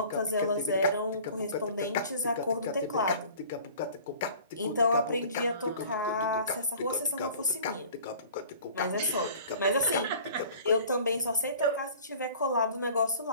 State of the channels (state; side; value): inverted; both; correlation -0.47